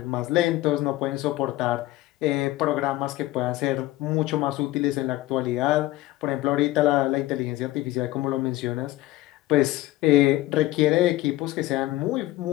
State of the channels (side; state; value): right; quieter; 17.2 dB